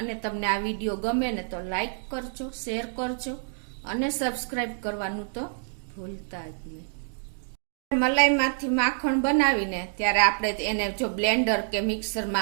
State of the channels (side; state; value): left; silent; digital silence